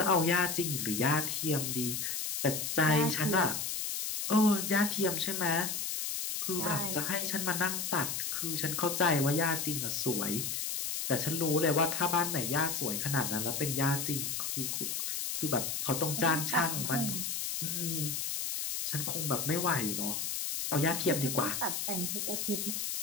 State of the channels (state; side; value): noise; left; hiss, 2 dB below the sound